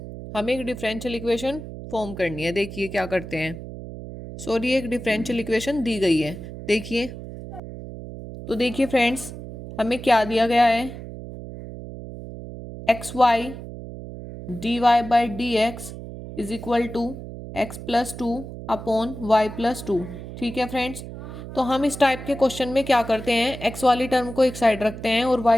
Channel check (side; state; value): right; noise; hum, 11 dB below the sound